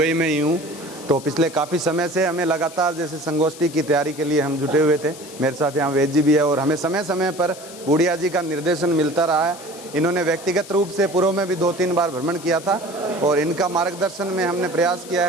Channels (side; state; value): left; noise; hiss, 17 dB below the sound